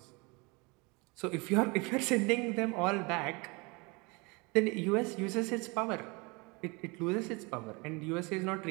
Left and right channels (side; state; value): left; quieter; 27.9 dB